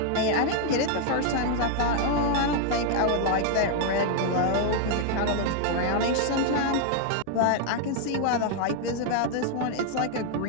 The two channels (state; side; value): different; both; correlation 0.00